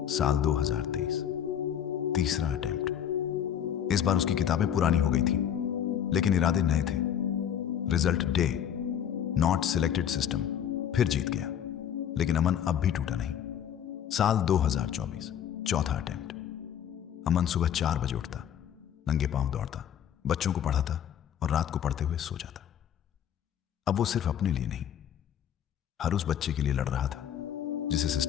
साल 2023, तीसरा अटेम्प्ट। इस बार उसकी किताबें पुरानी हो गई थी, लेकिन इरादे नए थे। Result day, not selected system फिर जीत गया, लेकिन अमन अब भी टूटा नहीं। साल 2024, चौथा अटेम्प्ट। अमन सुबह 4 बजे उठता, नंगे पांव दौड़ता, बच्चों को पढ़ाता और रात को पढ़ते हुए सो जाता। अब वो सिर्फ अपने लिए नहीं, हर उस बच्चे के लिए लड़ रहा था जिसे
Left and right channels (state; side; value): quieter; right; 9.4 dB